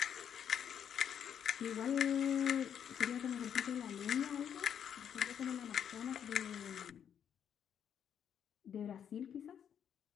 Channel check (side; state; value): right; quieter; 8.6 dB